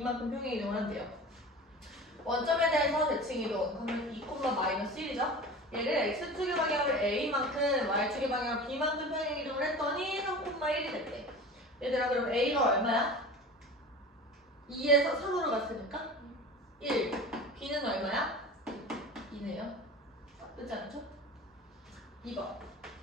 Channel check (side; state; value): both; normal; correlation 0.35